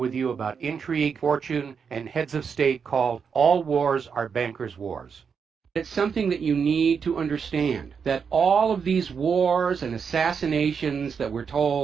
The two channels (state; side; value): quieter; left; 6.3 dB